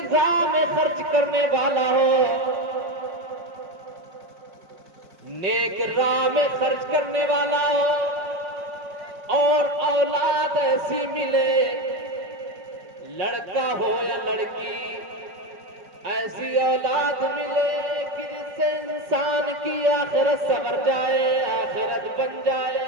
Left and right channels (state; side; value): late; left; 5.4 ms